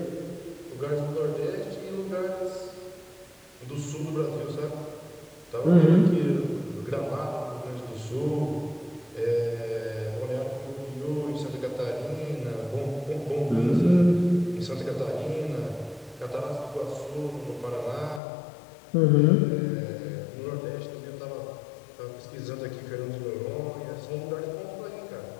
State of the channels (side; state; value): right; drops out; at 18.2 s